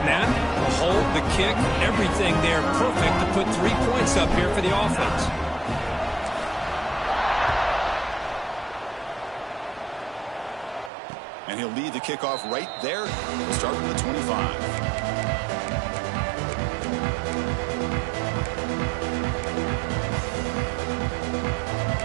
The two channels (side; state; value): left; drops out; at 10.9 s